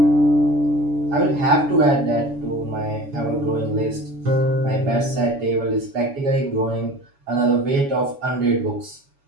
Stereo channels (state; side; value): late; left; 7.1 ms